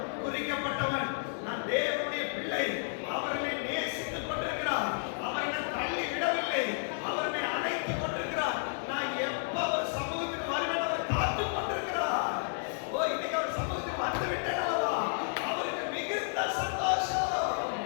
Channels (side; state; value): right; silent; 56 dB below the other